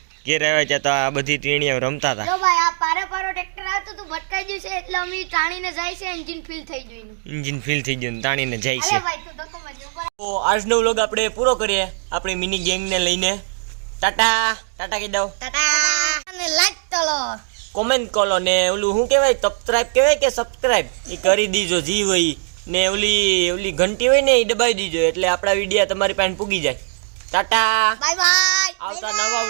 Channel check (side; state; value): left; silent; digital silence